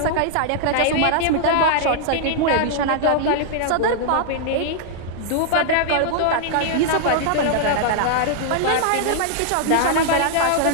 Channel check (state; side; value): different; both; correlation -0.01